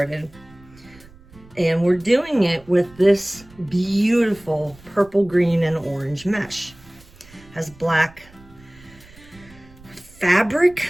And we're doing it with this beautiful purple, green, and orange mesh. Has black fabric,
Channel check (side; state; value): right; noise; rumble, 24 dB below the sound